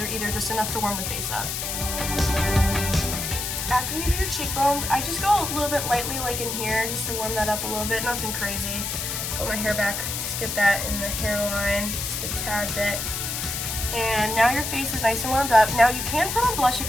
either, just enough to warm the face up. After you do your cheekbones, I just go a little bit lightly like in here just to warm that up a little bit, nothing crazy. Put my hair back, just get that in the hairline, just a tad bit. And now your face is nice and warmed up. Now you can put on blush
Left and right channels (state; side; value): noise; left; hiss, 3 dB below the sound